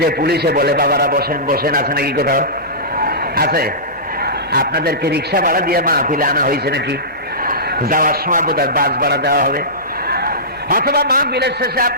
পুলিশে বলে বাবারা বসেন বসেন, আছে নাকি কোথাও? আছে? আপনাদেরকে রিক্সা ভাড়া দিয়ে মাহফিলে আনা হয়েছে নাকি? যাওয়ার সময় বোধহয় বাস ভাড়া দেওয়া হবে, অথবা মাহফিলের শেষে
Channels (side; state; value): both; normal; correlation -0.19